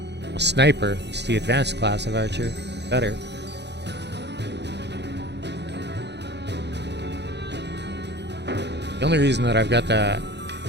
A sniper. It's the advanced class of archer. Better. The only reason that I've got the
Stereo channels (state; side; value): late; left; 0.50 ms